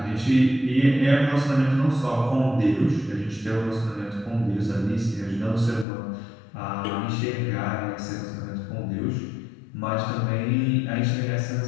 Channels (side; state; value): right; drops out; at 5.9 s